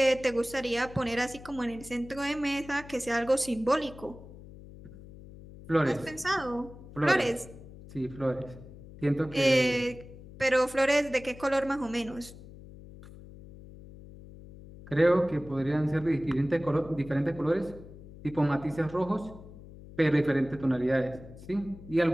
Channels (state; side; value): noise; left; hum, 17 dB below the sound